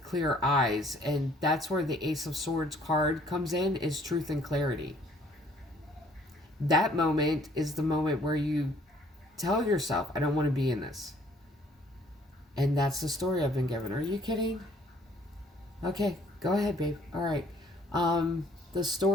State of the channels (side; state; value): both; normal; correlation 0.60